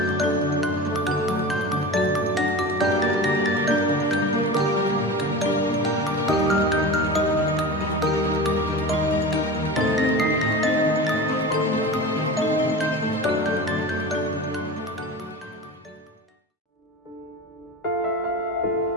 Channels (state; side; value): normal; both; correlation 0.31